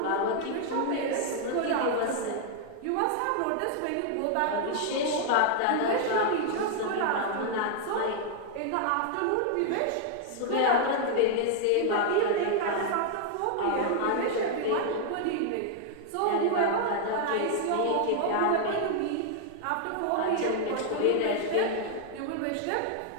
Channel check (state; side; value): different; both; correlation 0.00